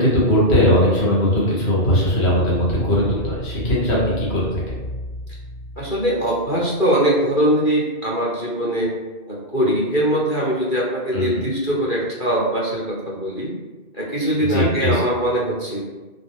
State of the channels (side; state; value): right; late; 2.4 ms